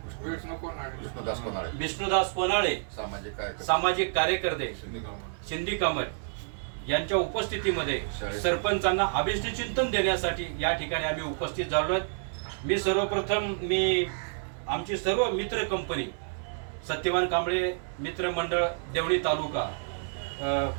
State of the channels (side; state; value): left; silent; 58 dB below the other